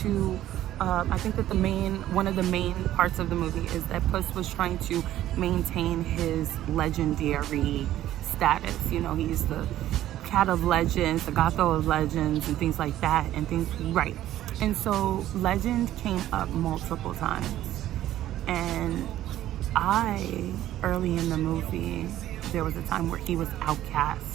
I think that one of the main parts of the movie is that Puss was trying to maintain his legendary status. He's the cat of legends, the Gatho of legends, and things like that, right. And so legend came up multiple times. And early in the movie, there was a time where he was outcast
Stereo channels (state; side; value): quieter; left; 13.2 dB